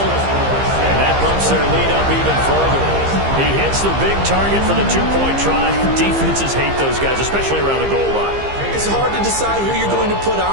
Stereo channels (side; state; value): left; late; 15 ms